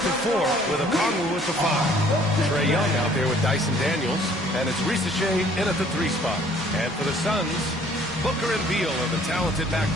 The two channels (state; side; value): normal; both; correlation 0.58